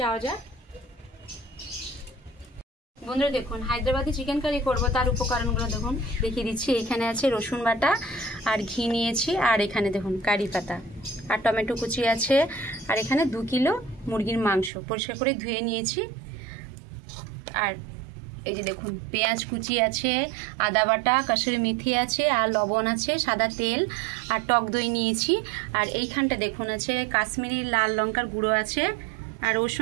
যাওয়া যাক। বন্ধুরা দেখুন, হায়দ্রাবাদি চিকেন কারি করবো তার উপকরণগুলো দেখুন দেখিয়ে দিচ্ছি। এখানে আছে রসুন বাটা আর ঘি নিয়েছি, আর এখানে দেখুন কারি পাতা আর টমেটো কুচি আছে, আর এখানে 2 কিলো মুরগির মাংস পরিষ্কার করে ধুয়ে নিয়েছি। আর এই যে দেখুন পেঁয়াজ কুচি আছে, আদা বাটা, কাসুরি মেথি আছে, আর লবণ আছে, সাদা তেল আর টক দই নিয়েছি। আর এইখানটা দেখুন আছে কাশ্মীরি লাল লঙ্কার গুঁড়ো আছে, আর ওর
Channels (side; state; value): left; drops out; at 14.7 s